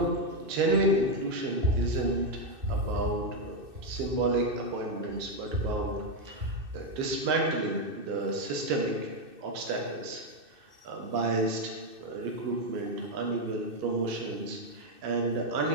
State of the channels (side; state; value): left; late; 2.6 ms